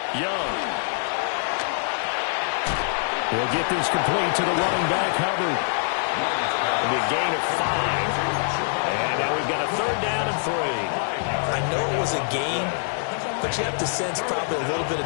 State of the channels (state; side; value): silent; right; digital silence